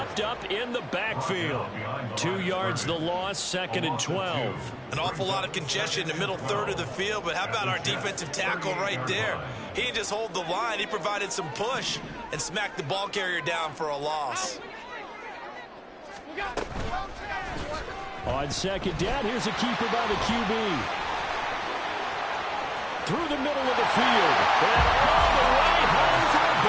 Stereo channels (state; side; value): identical; both; correlation 1.00